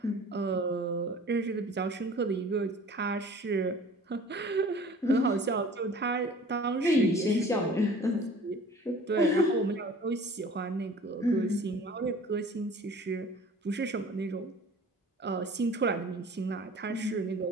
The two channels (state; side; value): normal; both; correlation 0.46